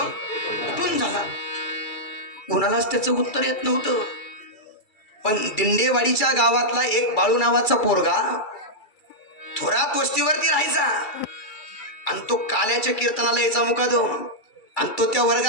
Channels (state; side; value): late; right; 2.3 ms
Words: कुठून झाला? कोणालाच त्याचं उत्तर येत नव्हतं. पण दिंडेवाडीच्या गावातला एक बाळू नावाचा पोरगा थोरात वस्तीवरती राहायचा आणि तो काल्याच्या कीर्तनाला यायचा मुकादम. आणि तो त्या